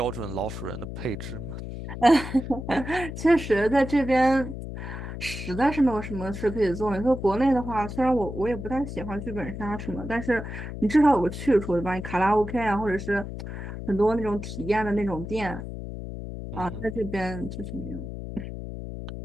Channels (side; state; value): left; noise; hum, 8 dB below the sound